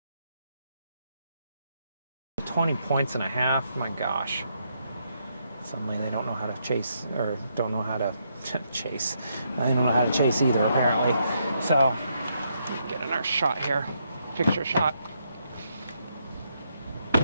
points and a half. My gosh. Suddenly they don't know how to chase, or don't know how to chase. They don't know how to chase either, apparently. So, get another shot here. Picture shot.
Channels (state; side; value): inverted; both; correlation -0.77